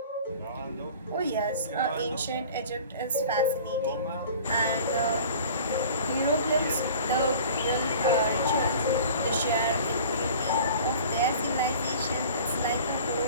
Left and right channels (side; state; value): both; inverted; correlation -0.44